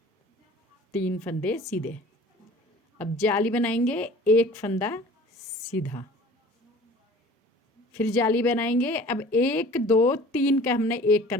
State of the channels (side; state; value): both; normal; correlation 0.46